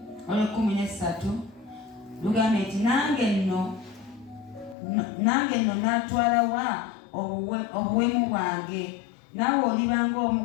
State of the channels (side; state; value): right; drops out; at 4.8 s